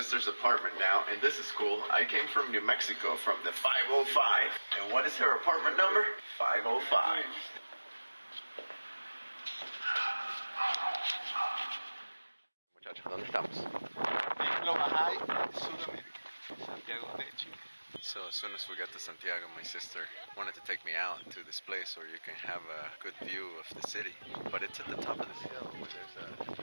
apartment now, and this is cool. I came from New Mexico, from the 505. And what is her apartment number? 505. Muchachos, ¿dónde estamos? En lo Bahai, Sudamérica, Santiago de Chile. So as soon as we got to Santiago, my sister wanted to take me out to this place where you can have a good view of the city. But it's at the top of this hill where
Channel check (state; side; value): inverted; both; correlation -1.00